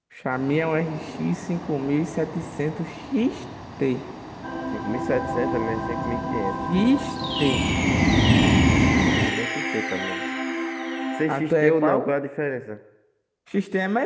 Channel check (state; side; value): identical; both; correlation 1.00